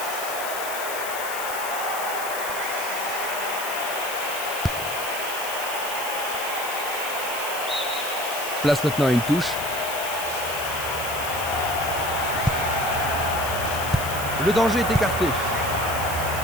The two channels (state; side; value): noise; left; hiss, 8 dB below the sound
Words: Place maintenant à une touche. Le danger est écarté.